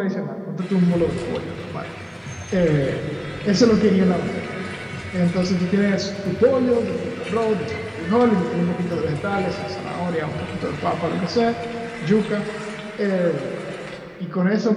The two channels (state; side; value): identical; both; correlation 1.00